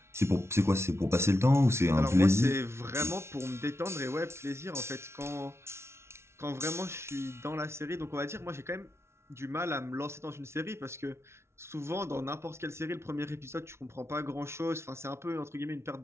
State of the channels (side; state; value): left; late; 0.13 ms